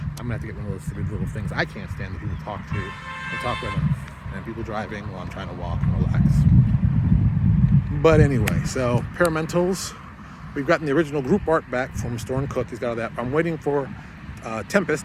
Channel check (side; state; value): both; identical; correlation 1.00